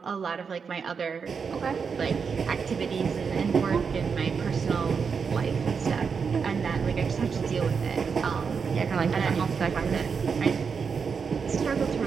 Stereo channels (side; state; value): left; quieter; 5.9 dB